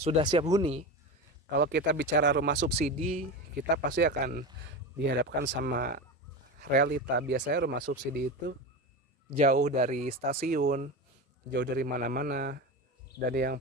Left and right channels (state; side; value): normal; both; correlation 0.23